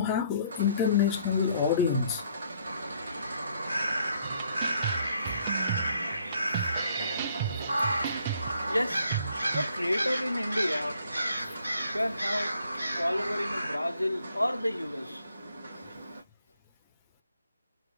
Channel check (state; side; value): inverted; both; correlation -0.66